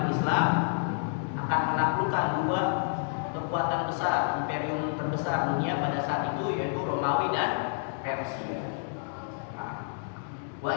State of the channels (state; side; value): silent; right; digital silence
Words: Islam akan menaklukkan dua kekuatan besar, imperium terbesar dunia pada saat itu, yaitu Romawi dan Persia. Nah, wa